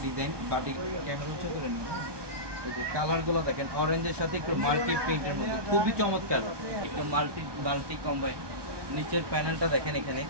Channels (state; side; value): late; left; 1.2 ms